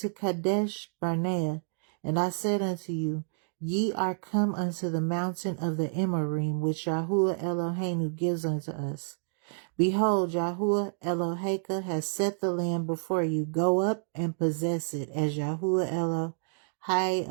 Kadesh Barnea, and I said unto you, Ye are come unto the mountain of the Emorym, which Yahuwah Eloheinu gives unto us. Behold, Yahuwah Eloheka has set the land before you. Go up and possess it, as Yahuwah Elohai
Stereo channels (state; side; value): silent; left; digital silence